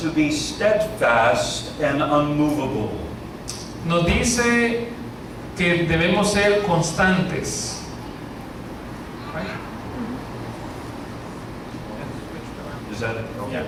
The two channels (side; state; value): both; identical; correlation 1.00